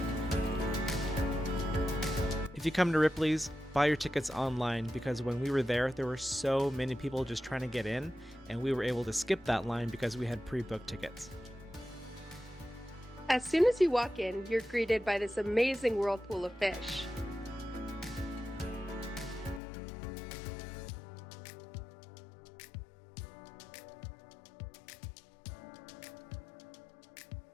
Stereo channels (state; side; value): drops out; right; at 19.6 s